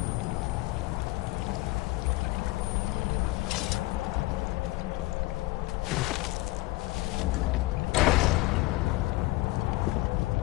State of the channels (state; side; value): quieter; right; 20.0 dB